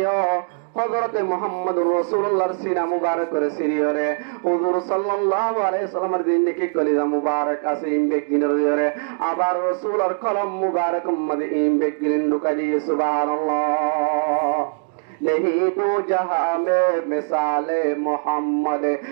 হযরত মুহাম্মদ রাসূলুল্লাহর সিনা মুবারক করে সিরিয়রে হুজুর সাল্লাল্লাহু আলাইহি সাল্লামের জিন্দেগি কলিজা মুবারক আছে ইমবে গিনরে আবার রাসূলের কলম মুবারক মধ্যে ইমবে গিন ঢুকাই দিয়ে সুবহানাল্লাহ। नहीं तो जहां में मिसाले मोहम्मद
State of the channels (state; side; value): silent; left; digital silence